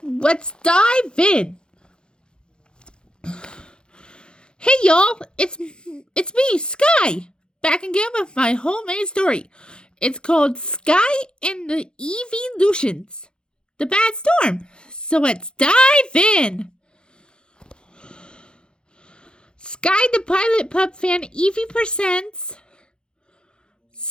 Let's dive in. Hey y'all, it's me, Skye, back again with my homemade story. It's called Skye and the Eeveelutions, the Bad Storm. So let's dive in. Skye the Pilot Pup Fan Eevee presents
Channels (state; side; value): late; right; 0.049 ms